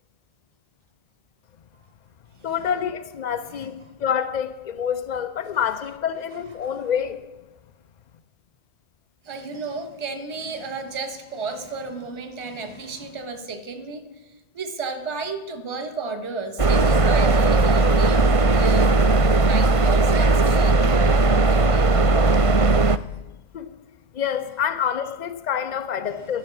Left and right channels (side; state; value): right; late; 1.5 ms